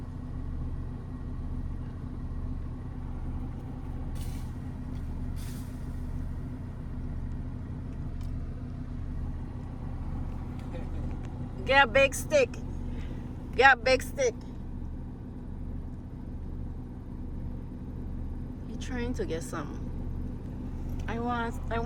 Get a big stick. Get a big stick. You're trying to get some. I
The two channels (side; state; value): both; identical; correlation 1.00